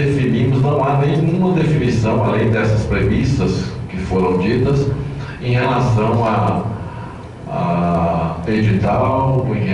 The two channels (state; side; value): identical; both; correlation 1.00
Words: não há nenhuma definição, além dessas premissas que foram ditas, em relação a edital, em